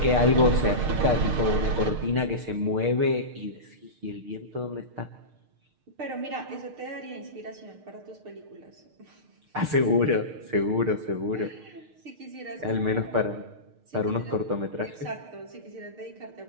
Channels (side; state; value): left; late; 6.6 ms